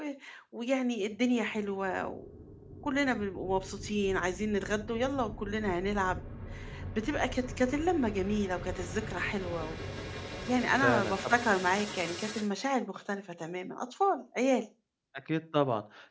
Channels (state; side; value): identical; both; correlation 1.00